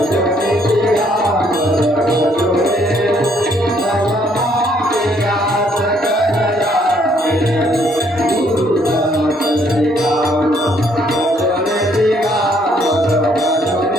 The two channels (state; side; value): normal; both; correlation 0.67